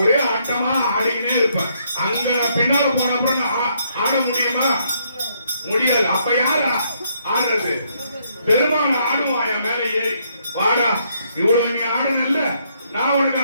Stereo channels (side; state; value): both; inverted; correlation -0.72